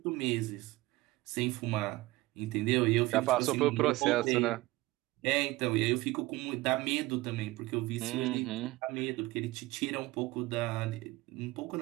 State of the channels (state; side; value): quieter; left; 19.5 dB